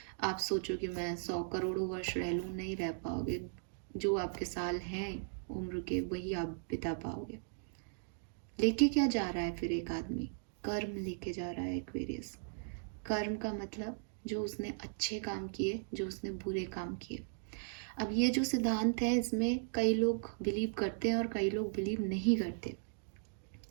आप सोचो कि मैं 100 करोड़ों वर्ष रह लूँ, नहीं रह पाओगे। जो आपके साल हैं उम्र के वही आप बिता पाओगे। लेके क्या जा रहा है फिर एक आदमी? कर्म लेके जा रहा है एक्वेरियस। कर्म का मतलब जो उसने अच्छे काम किए, जो उसने बुरे काम किए। अब ये जो सिद्धांत है इसमें कई लोग बिलीव करते हैं और कई लोग बिलीव नहीं करते।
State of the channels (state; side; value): silent; left; digital silence